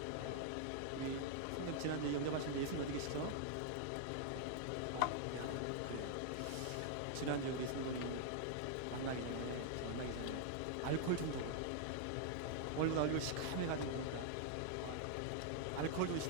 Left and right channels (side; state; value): both; different; correlation -0.01